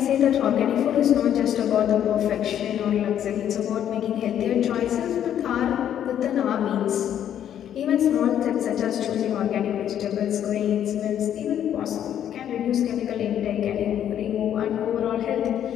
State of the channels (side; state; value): right; quieter; 10.1 dB